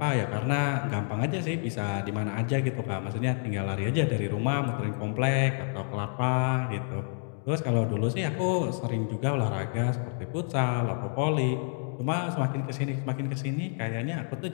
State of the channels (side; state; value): right; silent; 59 dB below the other